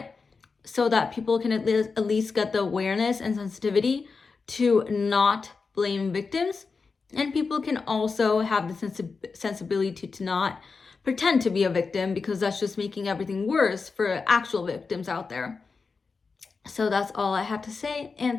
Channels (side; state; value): right; quieter; 4.7 dB